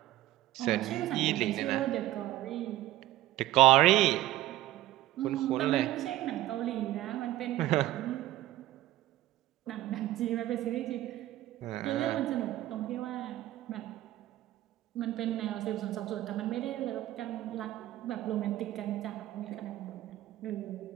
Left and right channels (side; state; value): left; quieter; 15.2 dB